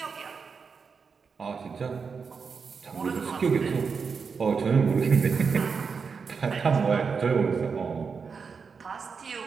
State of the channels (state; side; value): quieter; left; 5.5 dB